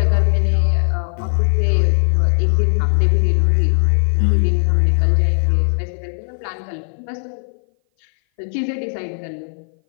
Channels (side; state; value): right; silent; 58 dB below the other